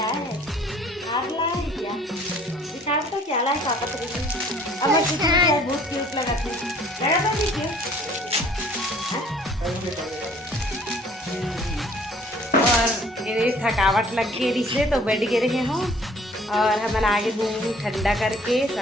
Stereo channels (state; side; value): normal; both; correlation 0.55